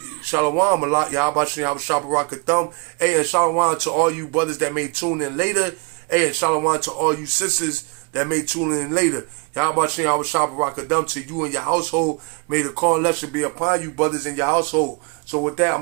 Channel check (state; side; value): quieter; left; 32.9 dB